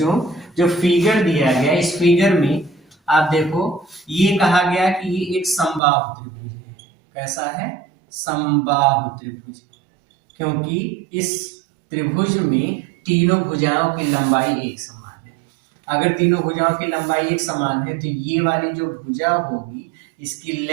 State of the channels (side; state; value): left; drops out; at 5.8 s